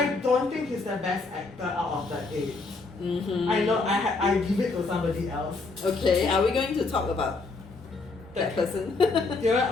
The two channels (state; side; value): quieter; right; 3.8 dB